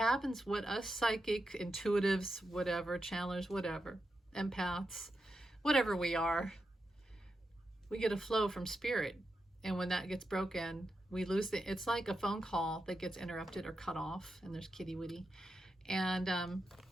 what us psychic, intuitives, whatever, channelers, whatever, empaths, whatever we are, we get a flow from Spirit. And when that gets broken, we lose it's like a phone call that gets interrupted or cut off, and there's kitty witty. And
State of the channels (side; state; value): both; normal; correlation 0.87